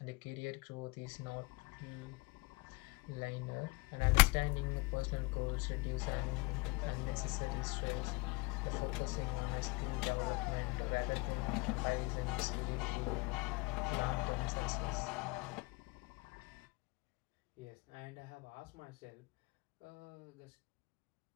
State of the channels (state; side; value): quieter; right; 26.3 dB